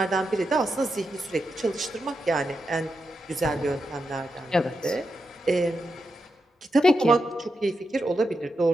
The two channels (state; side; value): normal; both; correlation 0.86